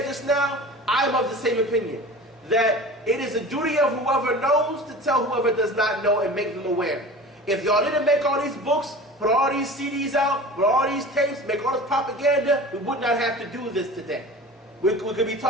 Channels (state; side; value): normal; both; correlation 0.37